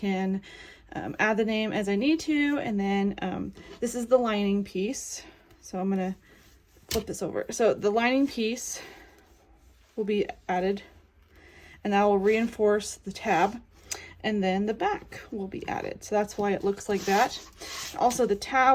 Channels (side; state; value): both; identical; correlation 1.00